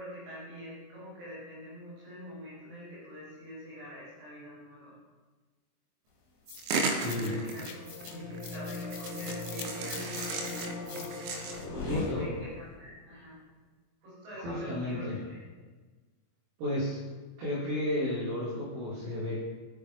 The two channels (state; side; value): late; left; 23 ms